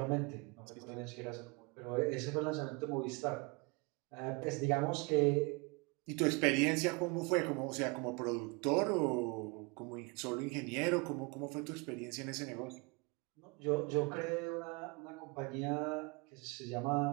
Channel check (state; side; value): quieter; left; 29.1 dB